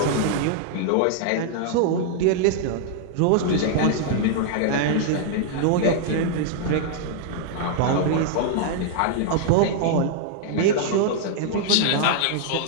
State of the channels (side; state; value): both; different; correlation -0.01